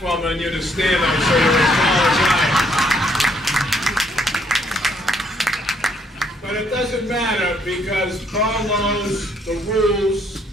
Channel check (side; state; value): both; normal; correlation 0.68